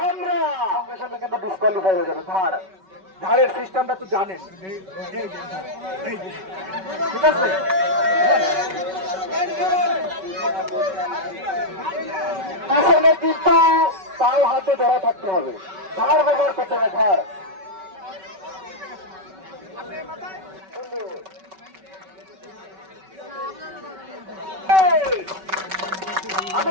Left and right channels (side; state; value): left; late; 5.3 ms